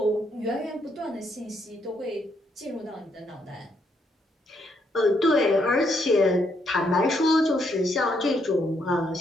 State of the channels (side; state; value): both; normal; correlation 0.74